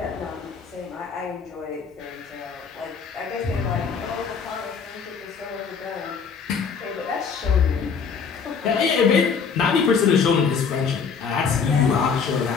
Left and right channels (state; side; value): quieter; right; 5.9 dB